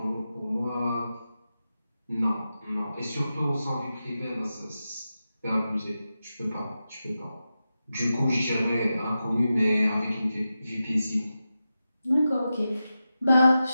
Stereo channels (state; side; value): inverted; both; correlation -0.91